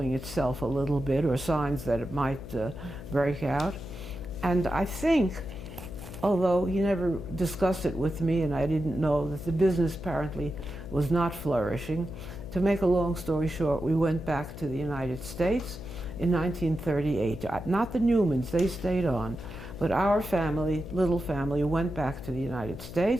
itself a little bit, or signs that it might break out. And I think, although he never discussed it with me and I didn't know, that the business apparently was not flourishing. To make a long story short, we went back to the United States in 1938. Not the Newmans, they stayed on. But our family, little family, went back to the United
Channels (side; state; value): left; noise; hum, 12 dB below the sound